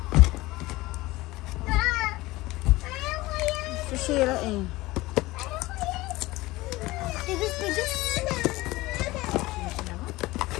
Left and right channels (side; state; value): right; quieter; 19.6 dB